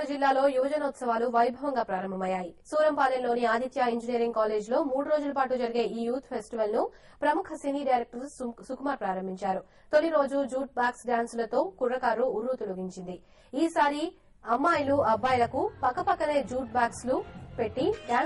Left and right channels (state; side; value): identical; both; correlation 1.00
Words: జిల్లాలో యువజనోత్సవాలు వైభవంగా ప్రారంభమయ్యాయి. సూరంపాలెంలోని ఆదిత్య ఇంజనీరింగ్ కాలేజ్ లో 3 రోజుల పాటు జరిగే ఈ యూత్ ఫెస్టివల్ ను ప్రముఖ సినీ డైరెక్టర్ సుకుమార్ ప్రారంభించారు. తొలి రోజు జూట్ బ్యాగ్స్ డాన్సులతో కుర్రకారు ఉర్రూతలూగించింది. ఈసారి అమ్మాయిలు అబ్బాయిలకు పక్కపక్కనే జూట్ బ్యాగ్స్ లు పెట్టి